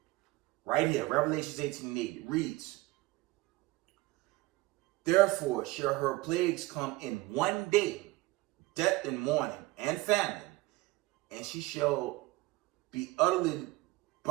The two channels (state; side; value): quieter; left; 20.2 dB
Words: Right here, Revelations 18:8, it reads, therefore shall her plagues come in one day, death and mourning and famine, and she shall be utterly